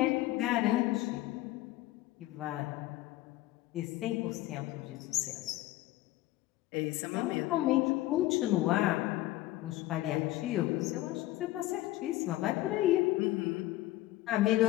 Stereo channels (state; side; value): quieter; right; 16.6 dB